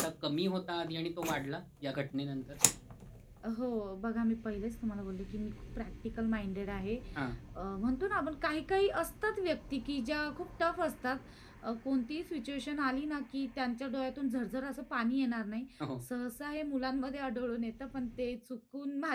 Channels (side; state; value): both; identical; correlation 1.00